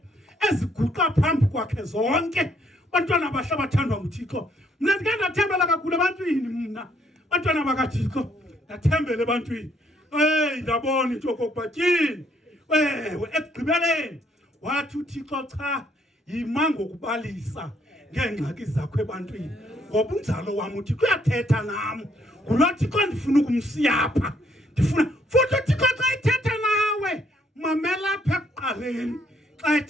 eziguqa phambi kwakhe zonke. Bantwana bahle bathandwa nguThixo mina ndike ndathembela kakhulu ebantwini mna. Bantwana bakaThixo ndathembela ebantwini ndabona into yokokuba tyini ewe ekugqibeleni wathi uThixo cha yima ngokubalisa ngeengxaki zakho ebantwini ngoba unjalo wam uThixo uyathetha nam ngulo Thixo ndifuna ukumsiya apha. Ndifuna futhi uThixo xa ethetha nawe mamela apha ekuqaleni xa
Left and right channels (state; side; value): normal; both; correlation 0.69